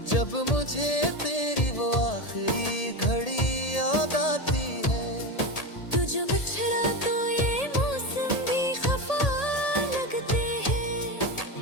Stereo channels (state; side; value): late; right; 1.8 ms